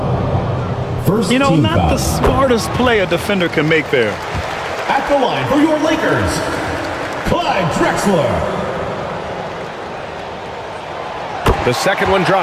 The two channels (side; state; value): both; identical; correlation 1.00